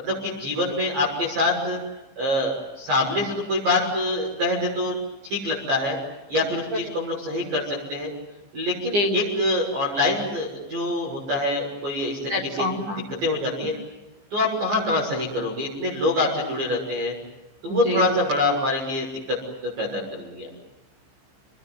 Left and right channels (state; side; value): late; left; 15 ms